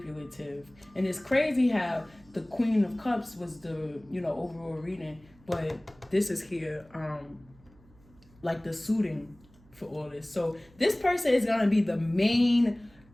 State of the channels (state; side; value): noise; right; hum, 27 dB below the sound